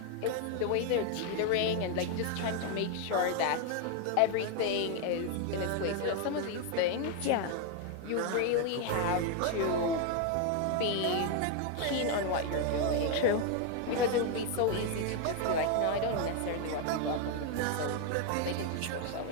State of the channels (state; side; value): different; both; correlation 0.01